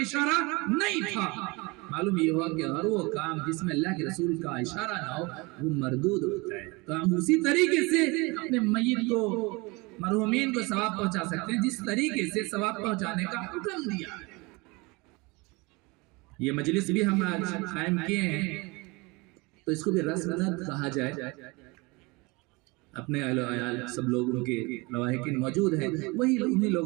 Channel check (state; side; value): quieter; left; 25.8 dB